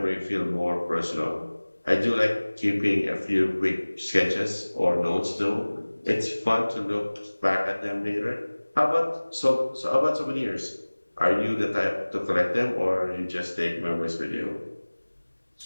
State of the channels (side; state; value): both; inverted; correlation -1.00